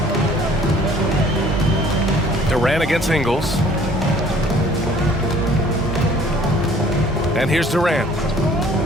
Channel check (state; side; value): normal; both; correlation 0.55